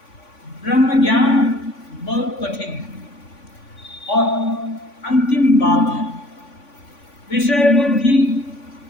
ब्रह्म ज्ञान बहुत कठिन है और अंतिम बात है। विषय बुद्धि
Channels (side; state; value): right; late; 3.5 ms